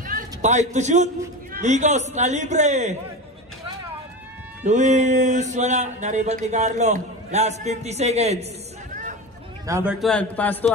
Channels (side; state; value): both; normal; correlation 0.26